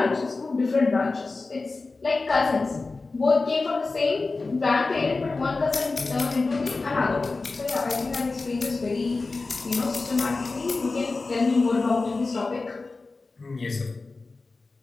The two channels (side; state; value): right; quieter; 3.7 dB